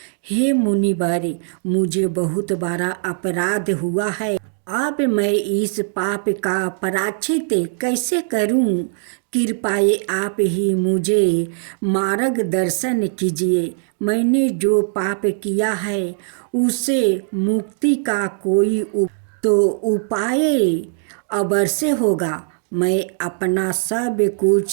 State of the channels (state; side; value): silent; left; digital silence